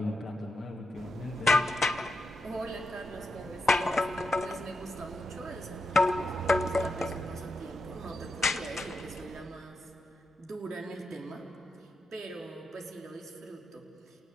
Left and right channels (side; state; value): both; normal; correlation 0.86